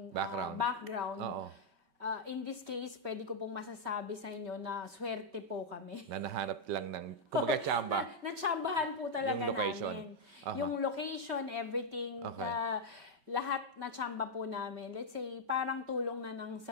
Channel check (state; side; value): late; left; 5.2 ms